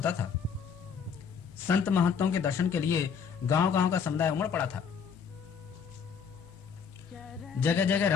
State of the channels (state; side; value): quieter; right; 6.6 dB